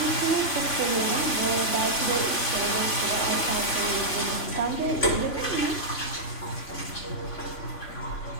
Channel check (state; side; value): late; right; 3.5 ms